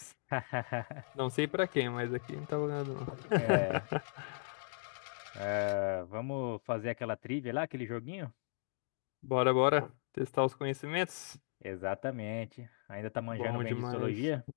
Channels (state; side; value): silent; right; digital silence